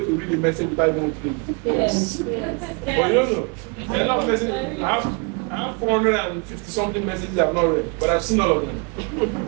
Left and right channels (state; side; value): quieter; left; 33.8 dB